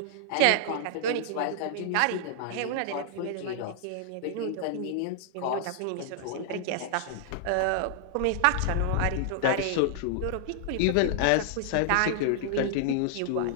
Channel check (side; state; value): both; different; correlation -0.01